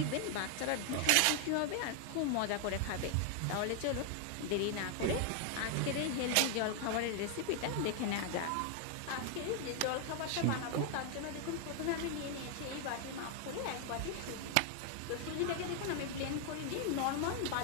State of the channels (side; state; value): both; different; correlation 0.00